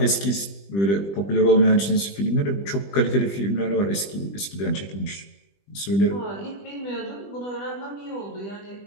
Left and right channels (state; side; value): late; right; 20 ms